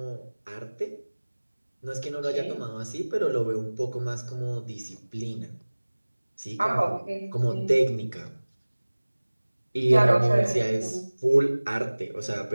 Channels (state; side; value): inverted; both; correlation -1.00